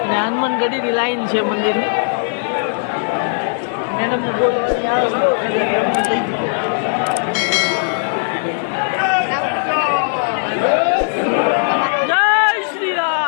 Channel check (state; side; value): silent; right; digital silence